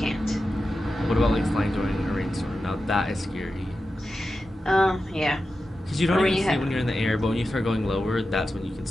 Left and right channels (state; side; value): normal; both; correlation 0.92